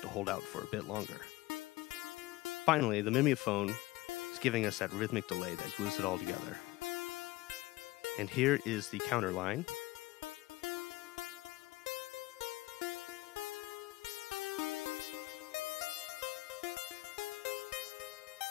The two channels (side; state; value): right; quieter; 19.3 dB